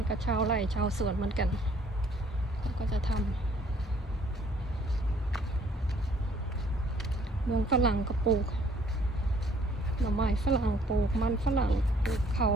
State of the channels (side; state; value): both; normal; correlation 0.61